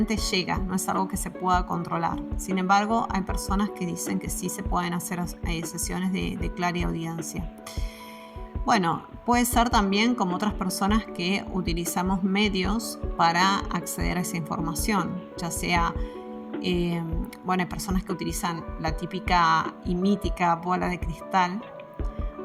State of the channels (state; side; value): identical; both; correlation 1.00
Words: llega, no es algo que se pueda controlar. Sin embargo, hay personas que dicen que sí se pueden hacer sesiones de clariaudiencia. Bueno, puede ser también como otras personas que utilizamos medios para acceder a esa información, ya sea... hay personas que utilizan la típica y mítica bola de cristal.